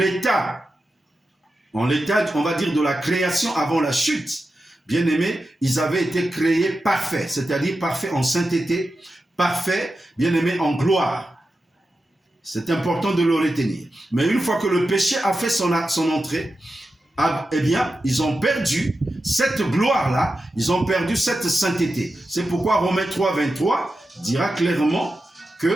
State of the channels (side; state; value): both; normal; correlation 0.91